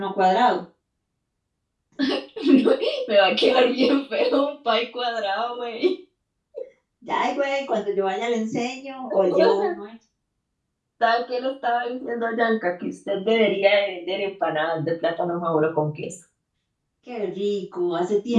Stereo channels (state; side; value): identical; both; correlation 1.00